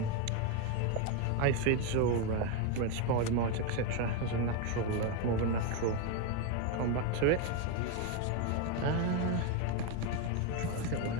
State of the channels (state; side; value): different; both; correlation 0.03